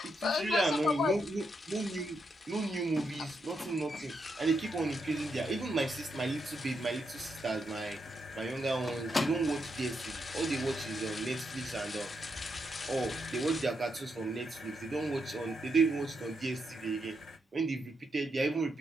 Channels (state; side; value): normal; both; correlation 0.81